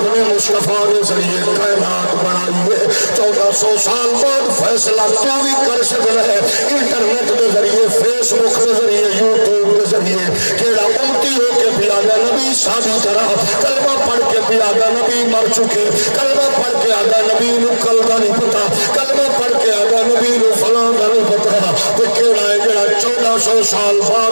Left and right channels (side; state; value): both; inverted; correlation -1.00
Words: نے مصطفیٰ نے ذریعے کائنات بنائی ہے. 1400 سال بعد فیصلہ تو بھی کر سکتا ہے انٹرنیٹ کے ذریعے فیس بک کے ذریعے یوٹیوب کے ذریعے کیڑا امتی ہو کے بھی آگا نبی شادی طرح کلمہ پڑھ کے بھی آگا نبی مر چکے کلمہ پڑھ کے آگا نبی نو کل کا نہیں پتا کلمہ پڑھ کے آگا نبی نو فلاں کا نہیں پتا تو کیڑا ہے جڑا 1400 سال